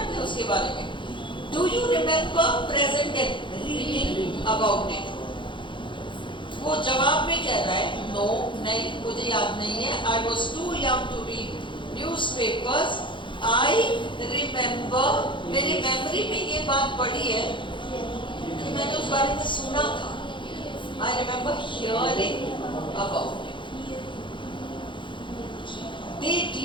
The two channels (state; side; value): late; right; 0.23 ms